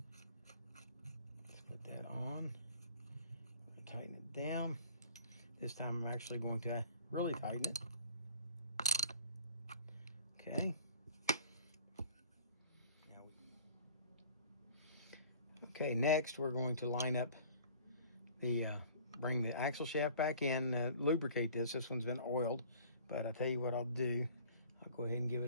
Let's put that on. Tighten it down. This time I'm actually going to really tighten it. Okay. Okay, next we're going to line up the, bring the axle shaft back in, lubricate this. This one's been oiled, but I'll tell you what I'll do. I'll go ahead and give it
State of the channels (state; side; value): inverted; both; correlation -0.50